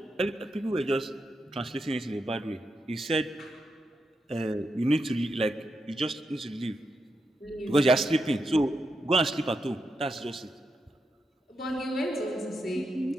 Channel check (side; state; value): both; normal; correlation 0.85